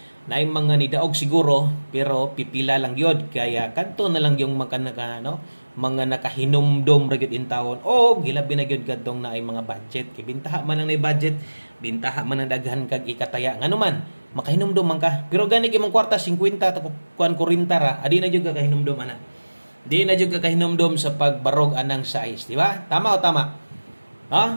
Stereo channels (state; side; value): inverted; both; correlation -1.00